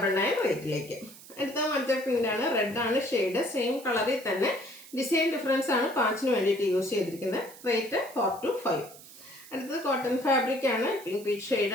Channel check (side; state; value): right; noise; hiss, 19 dB below the sound